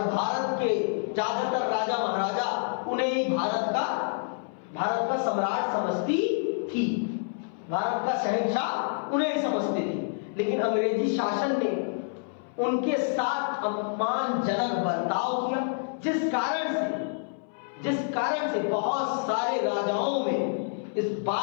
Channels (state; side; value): silent; right; 59 dB below the other